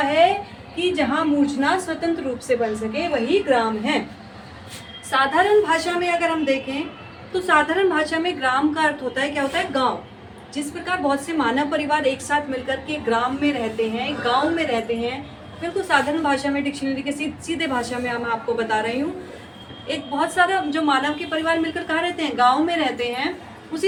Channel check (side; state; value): both; identical; correlation 1.00